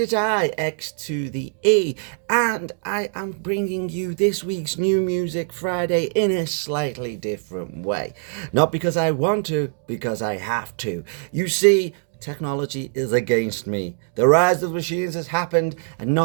I, X to the E, and I am bringing you this week's New Music Friday in a slightly different way. Not because I want to, because I have to. You see, technology is against me. The rise of the machines has happened, and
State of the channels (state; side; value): silent; left; 64 dB below the other